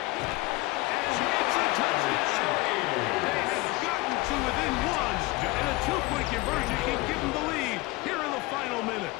And it's a touchdown. They have gotten to within one, and a two-point conversion can give them the lead here in the final minute.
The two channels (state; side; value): quieter; right; 21.5 dB